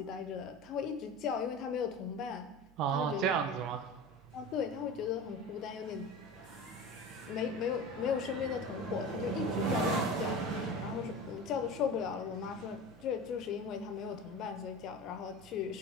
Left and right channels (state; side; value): noise; right; hum, 25 dB below the sound